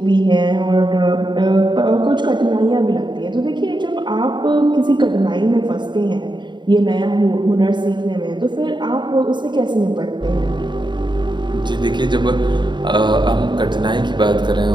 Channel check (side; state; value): left; late; 0.22 ms